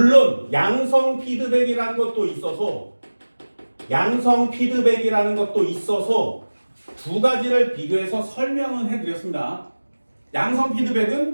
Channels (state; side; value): inverted; both; correlation -1.00